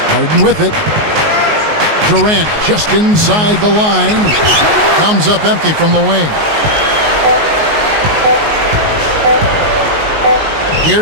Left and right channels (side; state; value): left; late; 19 ms